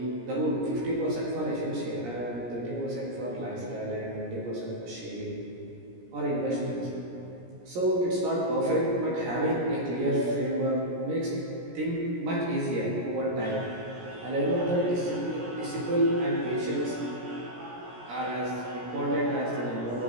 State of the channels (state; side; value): late; left; 17 ms